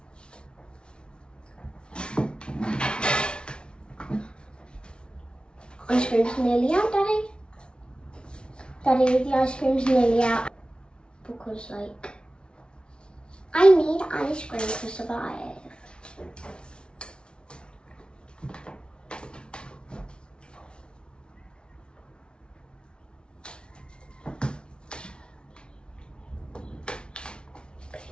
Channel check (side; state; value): right; late; 0.056 ms